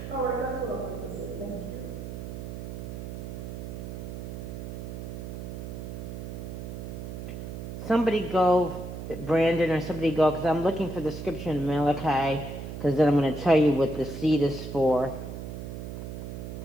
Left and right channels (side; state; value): right; noise; hum, 8 dB below the sound